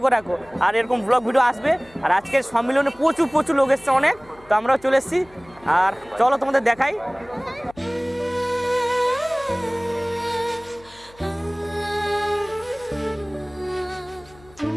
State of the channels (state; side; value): noise; left; hum, 26 dB below the sound